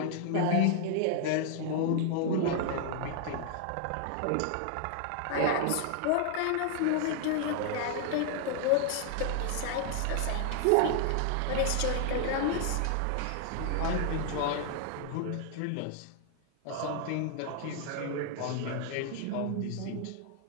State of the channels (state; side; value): different; both; correlation 0.00